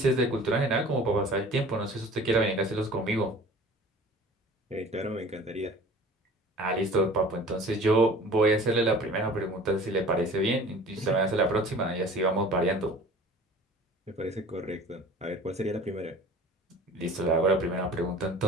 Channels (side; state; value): both; normal; correlation 0.44